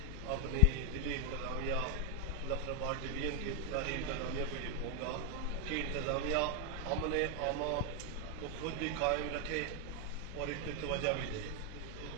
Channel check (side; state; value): left; noise; hum, 11 dB below the sound